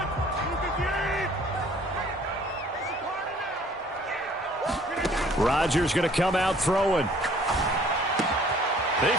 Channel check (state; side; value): normal; both; correlation 0.55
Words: Rodgers going to come out throwing. He